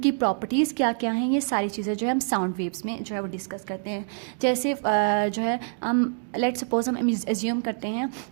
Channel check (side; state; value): left; silent; digital silence